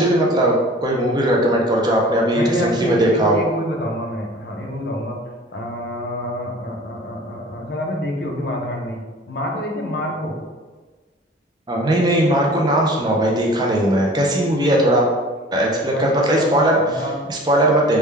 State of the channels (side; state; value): both; normal; correlation 0.44